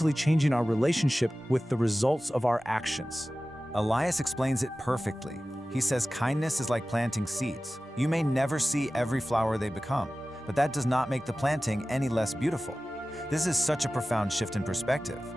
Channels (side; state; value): both; normal; correlation 0.96